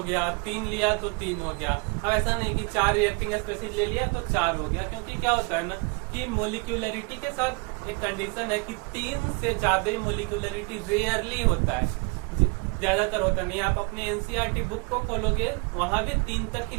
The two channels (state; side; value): quieter; left; 30.5 dB